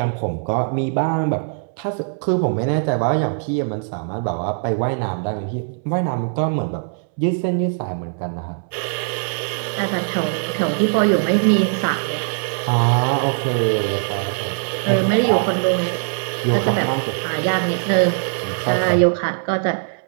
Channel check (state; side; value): silent; left; 65 dB below the other